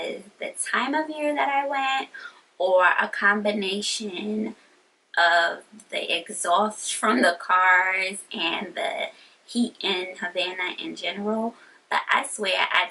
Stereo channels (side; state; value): both; identical; correlation 1.00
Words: the time of year that I went, or a combination of the exhaust from the cars and the heat in Havana in general. But I swear I